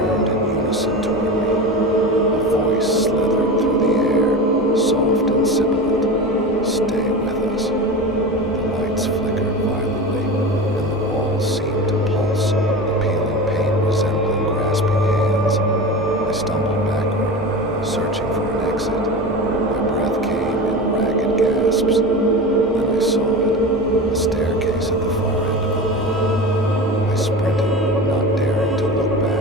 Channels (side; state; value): both; normal; correlation 0.28